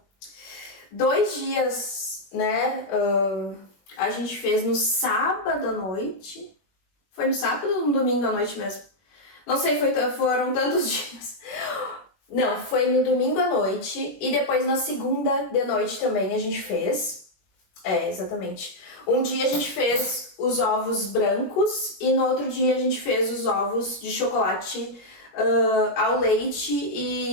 2 dias, né, a gente fez no sábado à noite. Foi no sábado ou no domingo à noite mesmo? Não sei, foram tantos dias. Não, foi no domingo à noite e depois na segunda de noite também a gente fez. É, exatamente. Um dia a gente fez os ovos brancos e no outro dia a gente fez os ovos de chocolate ao leite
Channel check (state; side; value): late; right; 21 ms